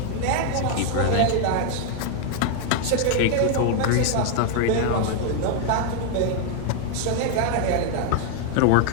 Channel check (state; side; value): different; both; correlation 0.00